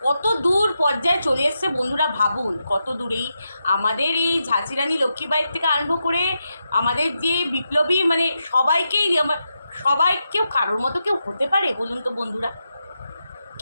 কত দূর পর্যায়ে চলে এসছে বন্ধুরা, ভাবুন কত দূরেই আমাদের এই ঝাঁসি রানী লক্ষ্মীবাঈর থেকে আরম্ভ করে আমাদের যে বিপ্লবী, মানে সবাইকেই, সবাই কেউ কারোর মতো কেউ হতে পারে বলুন তো বন্ধুরা?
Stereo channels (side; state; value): both; inverted; correlation -0.86